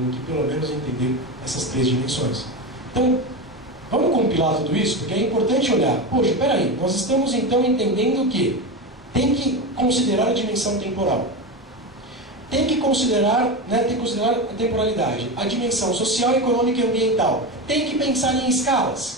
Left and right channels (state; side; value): normal; both; correlation 0.20